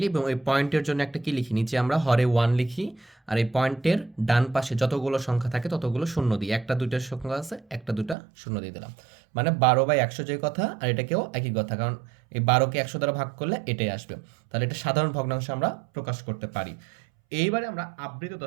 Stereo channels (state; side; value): drops out; left; at 8.2 s